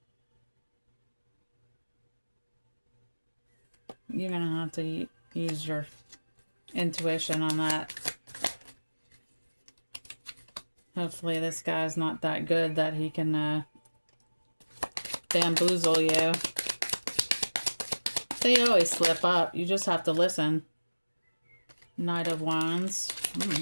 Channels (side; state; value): both; inverted; correlation -1.00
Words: You're going to have to use your intuition on that. Hopefully this guy's not that good that he can bamboozle you. They always slip up. You just have to listen. Knight of Wands.